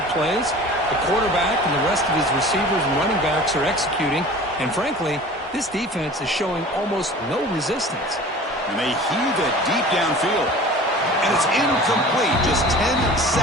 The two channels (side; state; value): both; normal; correlation 0.41